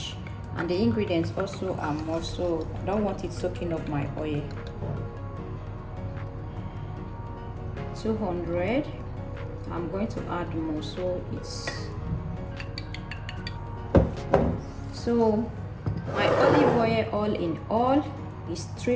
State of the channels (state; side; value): identical; both; correlation 1.00